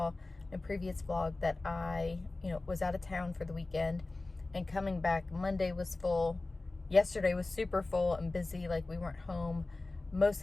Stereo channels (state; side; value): quieter; right; 3.2 dB